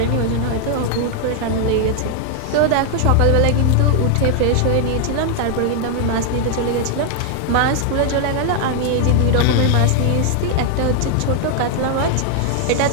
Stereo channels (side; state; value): both; different; correlation 0.00